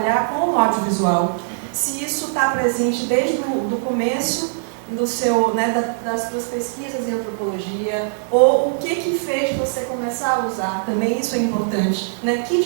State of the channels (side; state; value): left; silent; digital silence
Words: com o audiovisual. Se isso está presente desde o começo do seu, né, das suas pesquisas em antropologia, ou o que fez você começar a usar, também isso é importante, né? Que